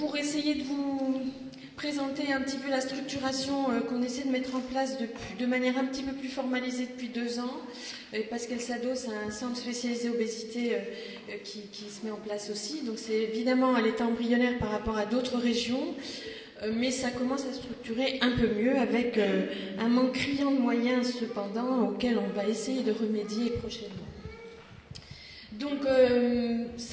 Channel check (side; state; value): both; identical; correlation 1.00